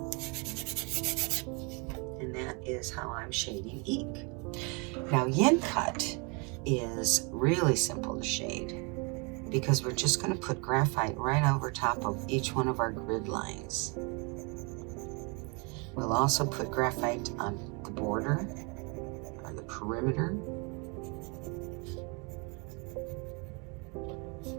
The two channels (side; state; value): left; quieter; 32.2 dB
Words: And that is how I'm shading eke. Now yin cut is really simple to shade because we're just going to put graphite right over top of each one of our grid lines. We'll also put graphite on the border or the perimeter.